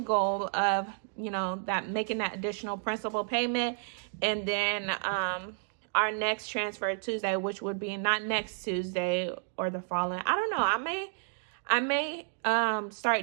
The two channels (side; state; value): left; silent; 57 dB below the other